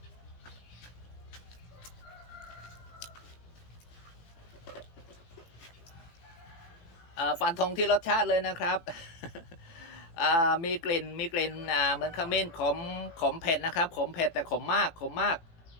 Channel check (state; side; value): late; right; 18 ms